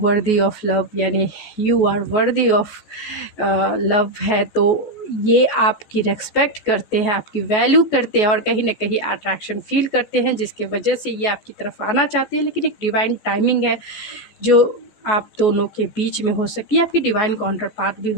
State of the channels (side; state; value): right; late; 14 ms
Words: ऑफ लव, यानी you are worthy of love है। तो ये आपकी रेस्पेक्ट करते हैं, आपकी वैल्यू करते हैं और कहीं ना कहीं अट्रैक्शन फील करते हैं, जिसके वजह से ये आपकी तरफ आना चाहते हैं। लेकिन एक डिवाइन टाइमिंग है जो आप दोनों के बीच में हो सकती है। आपकी डिवाइन काउंटर पार्ट भी